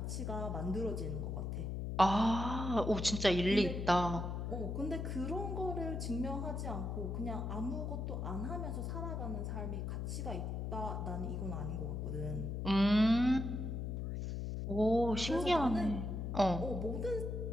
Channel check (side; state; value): left; noise; hum, 3 dB below the sound